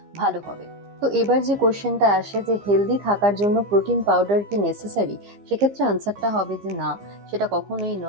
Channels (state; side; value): late; left; 15 ms